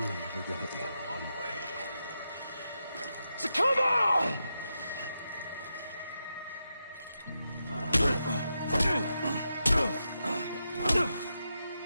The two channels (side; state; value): both; inverted; correlation -0.86